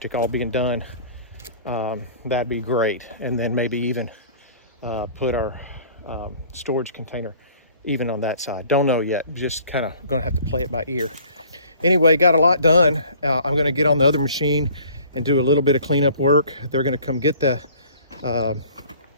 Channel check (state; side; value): inverted; both; correlation -0.51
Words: all being done, that'd be great. And then maybe even put our storage container even on that side. Don't know yet. Just kind of gonna have to play it by ear. Anyway, got a lot done. I'm gonna get on the other machine and do a little bit of cleanup work. They're gonna come get the